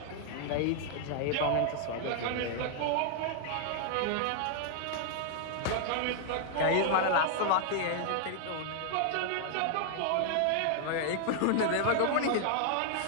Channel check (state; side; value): different; both; correlation 0.00